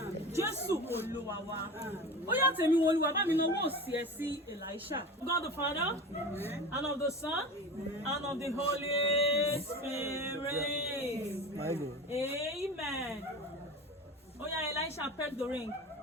Jésù Olúwa wa. Ó yá Temiwunoluwa bá mi náwó òsì ẹ sí Elisha. God the Father, and of the Son, and of the Holy Spirit. Amen. Oh yeah, Elisha, peck the ring.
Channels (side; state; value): both; normal; correlation 0.31